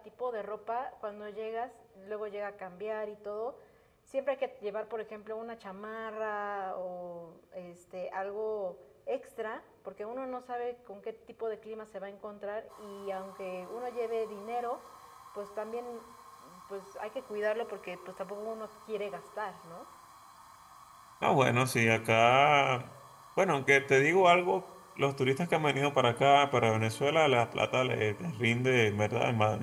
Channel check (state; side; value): identical; both; correlation 1.00